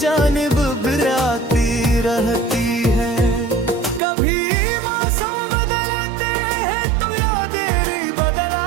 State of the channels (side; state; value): left; drops out; at 4.0 s